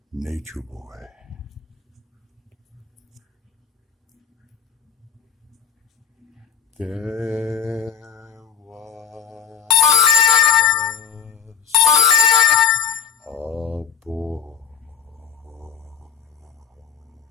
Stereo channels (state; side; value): quieter; right; 7.8 dB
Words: Nature Boy. There was a boy,